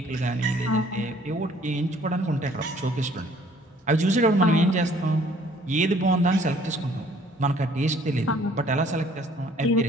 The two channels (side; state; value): both; normal; correlation 0.58